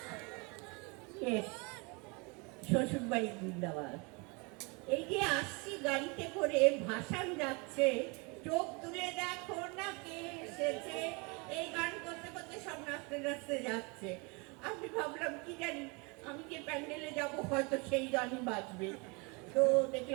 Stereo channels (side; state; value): left; quieter; 29.9 dB